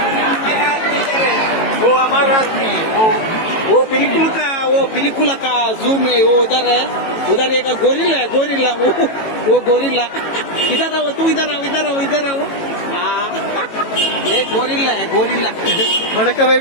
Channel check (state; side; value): late; right; 18 ms